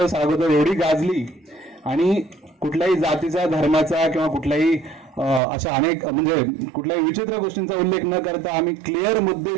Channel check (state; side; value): drops out; left; at 5.4 s